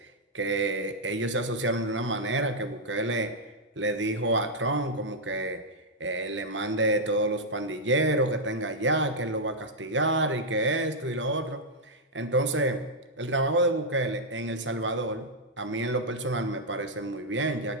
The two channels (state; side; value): normal; both; correlation -0.05